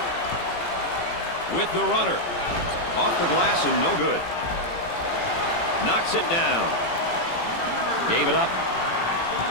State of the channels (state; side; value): late; right; 18 ms